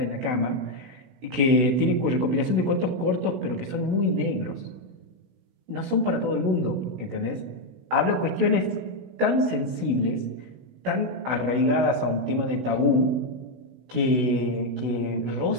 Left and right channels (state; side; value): late; left; 16 ms